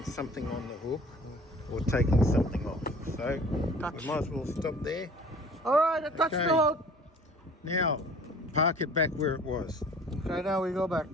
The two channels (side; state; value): both; normal; correlation 0.48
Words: something on the hook or taking something off. So we might as well stop there. All right, I touched the hook. Now park it back where it was. Okay, now we go back.